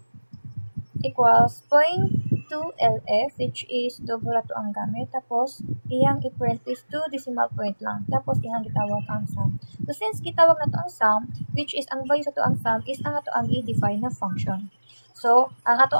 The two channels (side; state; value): both; inverted; correlation -1.00